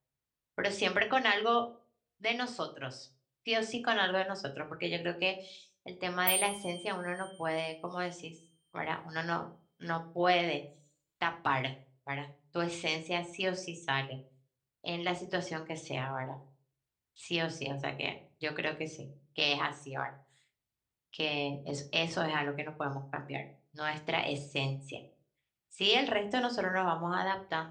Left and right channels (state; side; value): identical; both; correlation 1.00